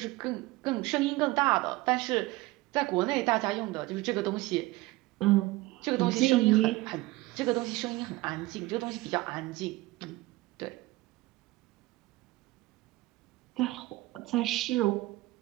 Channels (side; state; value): left; quieter; 19.6 dB